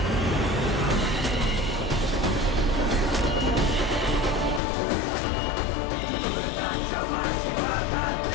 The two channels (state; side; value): drops out; right; at 4.6 s